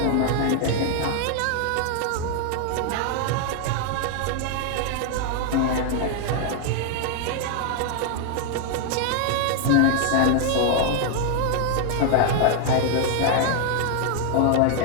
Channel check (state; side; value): different; both; correlation 0.00